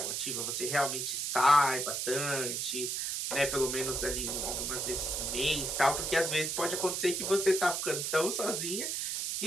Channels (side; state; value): right; noise; hiss, 1 dB below the sound